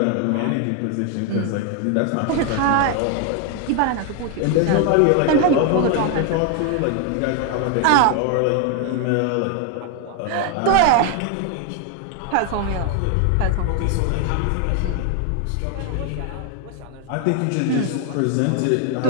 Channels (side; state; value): both; different; correlation 0.00